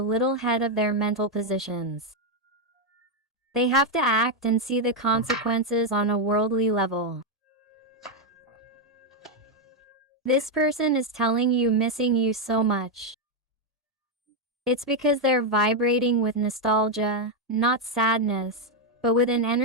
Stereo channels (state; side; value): normal; both; correlation 0.03